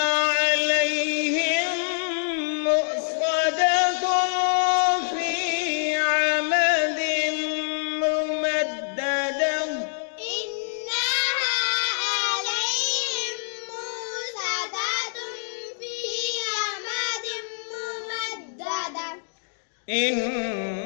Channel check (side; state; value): right; silent; digital silence